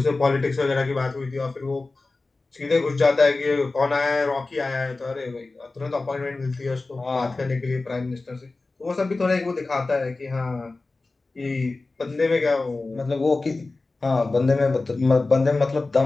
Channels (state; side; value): quieter; right; 3.5 dB